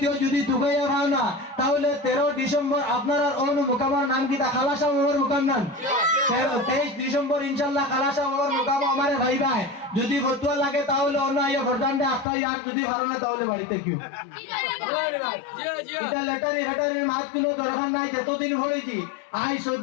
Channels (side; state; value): right; drops out; at 12.2 s